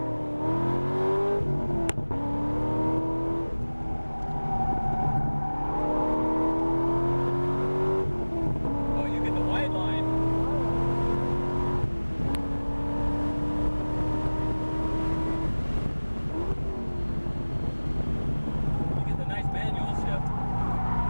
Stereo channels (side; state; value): both; inverted; correlation -1.00